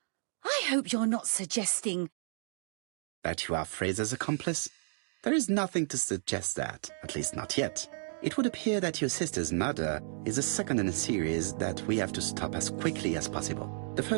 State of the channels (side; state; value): left; silent; digital silence